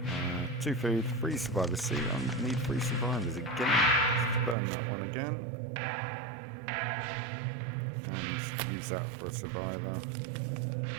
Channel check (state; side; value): drops out; left; at 4.5 s